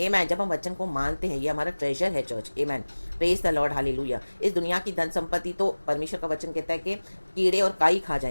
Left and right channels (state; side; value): inverted; both; correlation -1.00